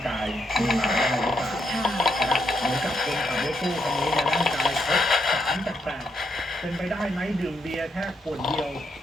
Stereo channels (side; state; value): both; normal; correlation 0.78